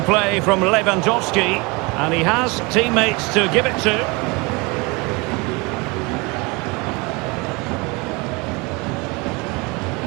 play from Lewandowski, and he has teammates to give it to.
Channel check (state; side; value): quieter; left; 27.1 dB